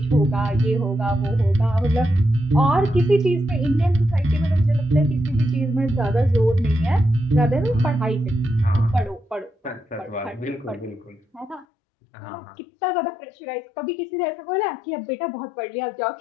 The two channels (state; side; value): drops out; right; at 11.7 s